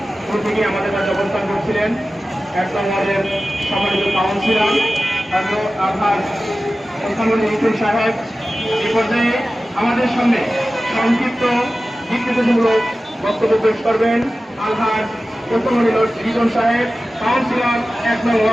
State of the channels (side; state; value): both; normal; correlation 0.95